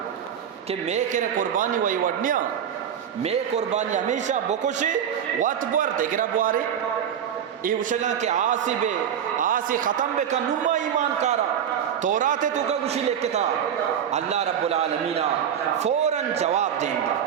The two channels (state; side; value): quieter; left; 8.9 dB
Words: کہ میں کرے قربانی وہی وڈنیا میں قربانی ہمیشہ بکوشی وات بوار دیگرہ بوارے یہ وشگاں کہ آسی ختم بکا نما ایمان کارا تورات تو کا گوشی لکھتا تھا اللہ رب العالمین فوراً جواب دیں گا